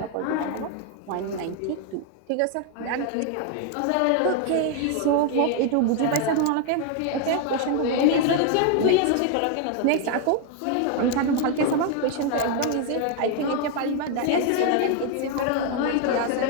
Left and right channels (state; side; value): different; both; correlation 0.01